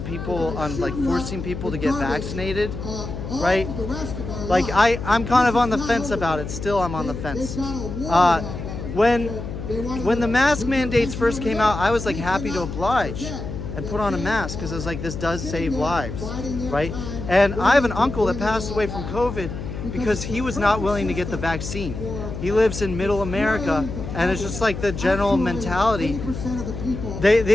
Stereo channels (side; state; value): left; noise; hum, 7 dB below the sound